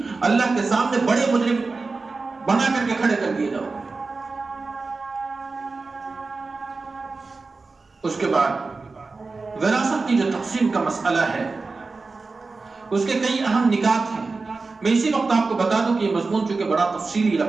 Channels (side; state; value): left; quieter; 3.9 dB